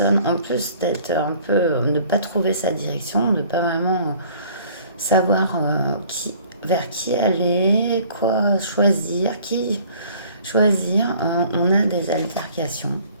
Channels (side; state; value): both; inverted; correlation -0.54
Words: En plus d'être un peu, ne pas trouver sa direction, de pas vraiment savoir qui vers qui aller, quoi choisir, qui choisir. On a des altercations.